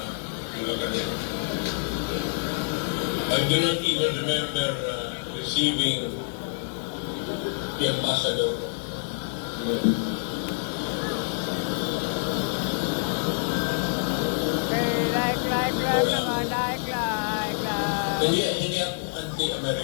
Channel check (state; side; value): silent; right; digital silence